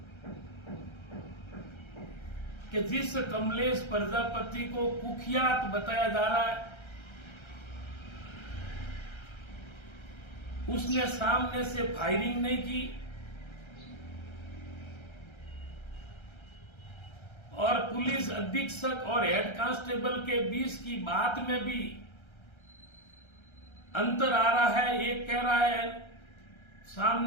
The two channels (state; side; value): late; right; 1.3 ms